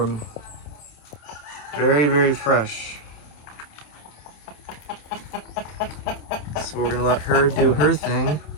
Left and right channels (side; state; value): right; late; 27 ms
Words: Very, very fresh. So we're gonna let her do her thing